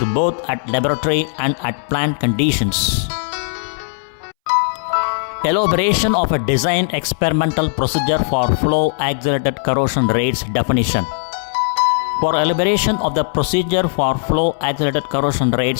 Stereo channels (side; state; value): right; silent; 64 dB below the other